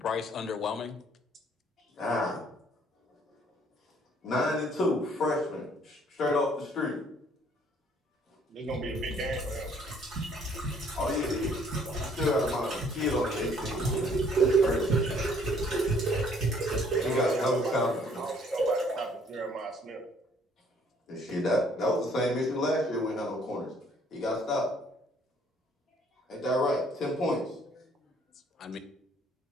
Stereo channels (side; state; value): both; normal; correlation 0.62